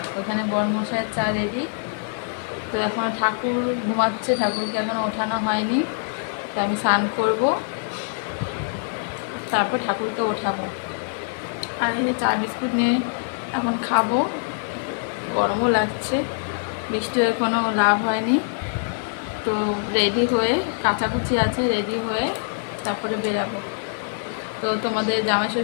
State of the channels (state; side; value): silent; right; digital silence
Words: ওখানে বড় মশাইয়ের চা রেডি। তো এখন ঠাকুর ঘুমাচ্ছে, ঠাকুরকে এখনও ওঠানো হয়নি। তো আমি স্নান করব, তারপর ঠাকুরকে ওঠাবো। আর এই চা বিস্কুট নিয়ে এখন খাবো। গরমও লাগছে, বৃষ্টি হয়ে কোনো লাভ হয়নি। তো রেডি হয়ে, কাচাকুচি আছে, রেডি হয়ে তারপরে বেরাবো। তো তোমাদের জামাই